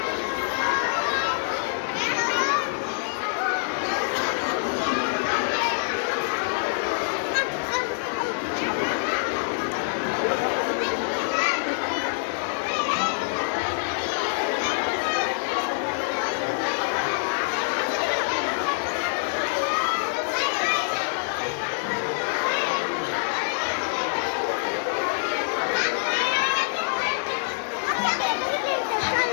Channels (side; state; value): right; silent; 61 dB below the other